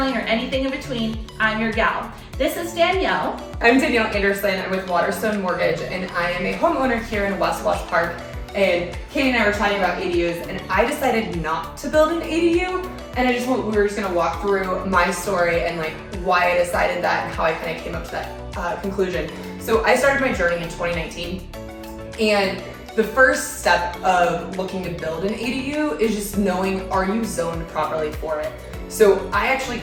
or anything in between, I'm your gal. This is Danielle. I'm Danielle Anderson. I'm with Waterstone Mortgage, and I am a homeowner here in West Wash Park. And Katie and I were chatting about ADUs, and I decided not to build an ADU. And we were just gonna walk through my story and like why I decided that and how I kind of came up to that conclusion. So I started my journey in 2019, and the first step of looking to build an ADU is just knowing, are you zoned properly for it? So I actually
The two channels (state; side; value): identical; both; correlation 1.00